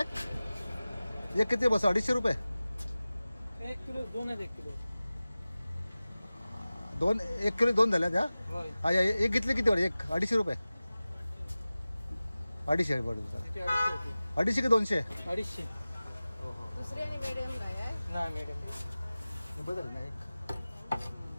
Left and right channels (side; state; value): both; inverted; correlation -0.97